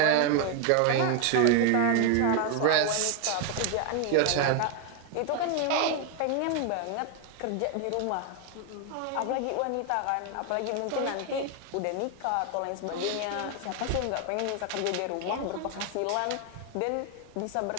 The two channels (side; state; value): both; different; correlation 0.01